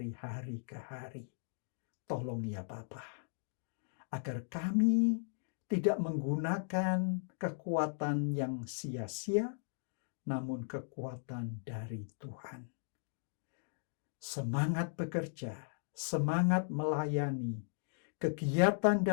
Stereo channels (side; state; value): right; silent; digital silence